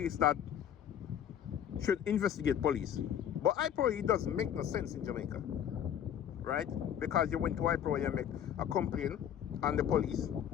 that should investigate police. But iPro, it doesn't make no sense in Jamaica, right? Because you went to iPro, you make a complaint on the police.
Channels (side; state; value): right; quieter; 9.6 dB